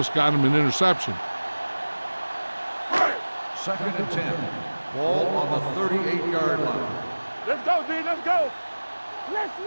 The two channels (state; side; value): inverted; both; correlation -1.00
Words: got him an interception. 2nd and 10. Ball on the 38-yard line. Let's go, D. Let's go. Let's